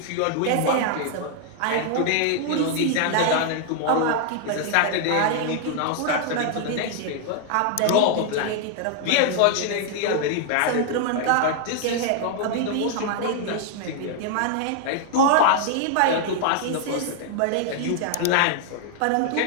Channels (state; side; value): different; both; correlation 0.00